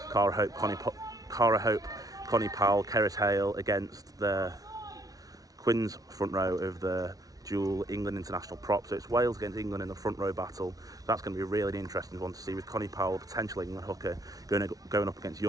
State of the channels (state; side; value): late; left; 0.18 ms